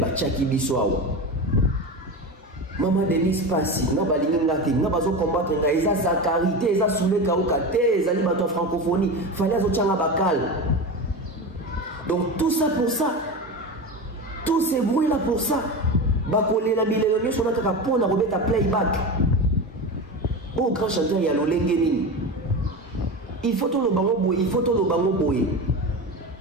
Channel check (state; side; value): normal; both; correlation 0.24